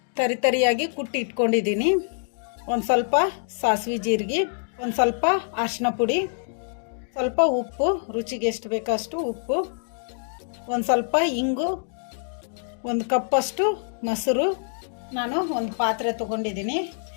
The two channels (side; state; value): right; silent; 62 dB below the other